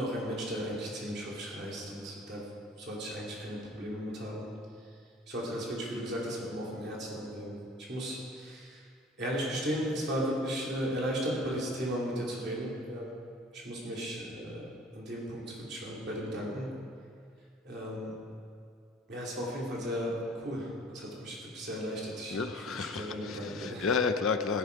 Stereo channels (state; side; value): normal; both; correlation 0.47